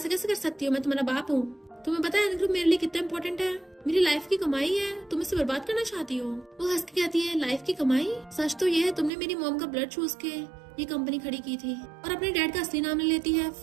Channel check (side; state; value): left; drops out; at 9.1 s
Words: कैसे कर सकती हो, मैं तुम्हारा बाप हूँ। तुम्हें पता है एन ग्रुप मेरे लिए कितना इंपॉर्टेंट है, मेरी लाइफ की कमाई है, तुम इसे बर्बाद करना चाहती हो। वो हंस के कहती है लाइफ की कमाई, सच तो ये है तुमने मेरी मॉम का ब्लड चूस के ये कंपनी खड़ी की थी। और अपने डैड का असली नाम ले लेती है